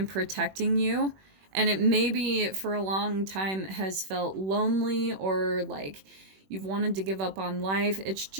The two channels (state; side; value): late; left; 21 ms